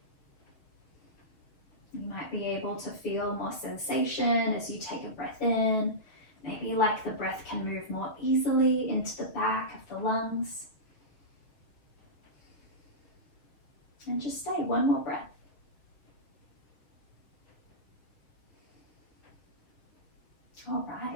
You might be able to feel more sensation as you take a breath in. Maybe like the breath can move more easily into the back of the lungs. And just stay, one more breath. All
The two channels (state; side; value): late; right; 6.7 ms